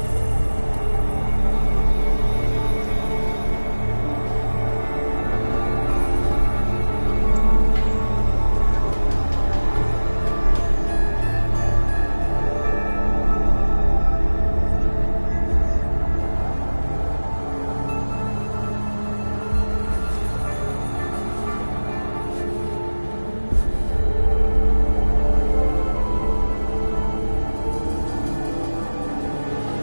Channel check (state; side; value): inverted; both; correlation -1.00